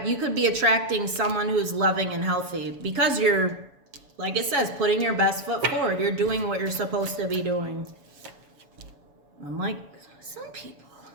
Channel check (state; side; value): late; left; 7.1 ms